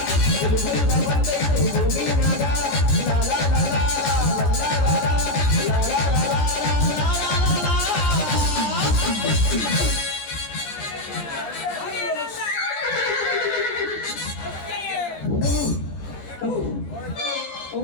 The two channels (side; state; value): right; late; 14 ms